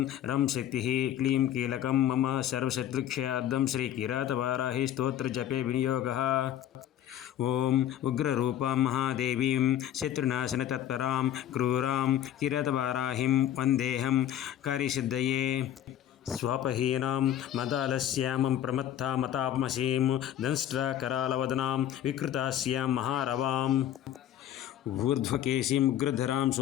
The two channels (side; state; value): right; quieter; 11.2 dB